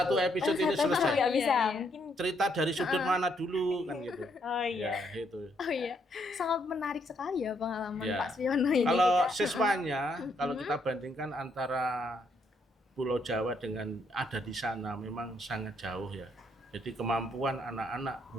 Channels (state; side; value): normal; both; correlation 0.73